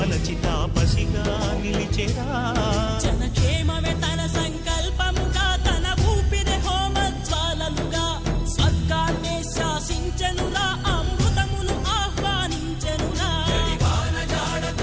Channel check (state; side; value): identical; both; correlation 1.00